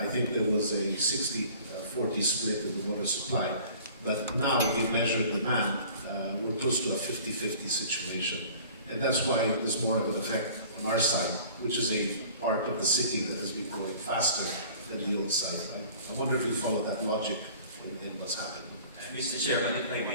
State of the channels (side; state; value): both; inverted; correlation -0.47